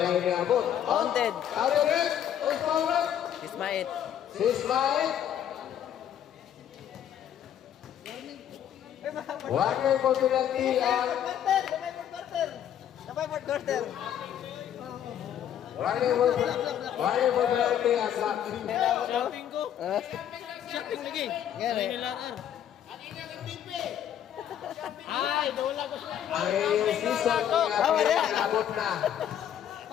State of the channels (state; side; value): quieter; right; 10.0 dB